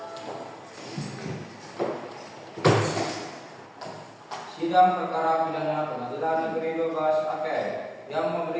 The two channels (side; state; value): both; identical; correlation 1.00